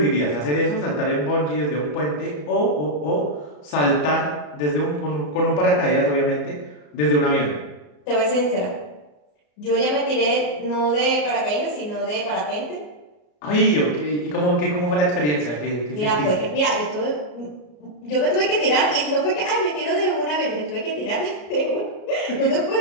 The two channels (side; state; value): right; late; 34 ms